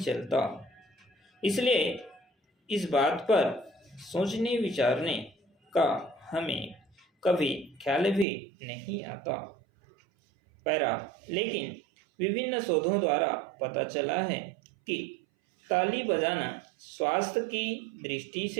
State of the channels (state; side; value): drops out; left; at 8.2 s